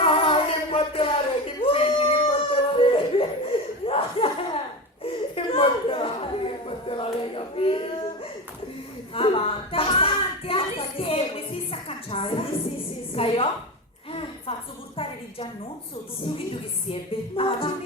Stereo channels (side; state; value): both; normal; correlation 0.23